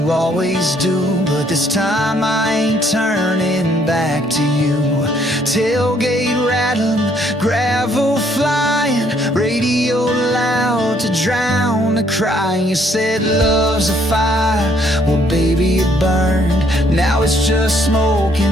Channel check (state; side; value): normal; both; correlation 0.67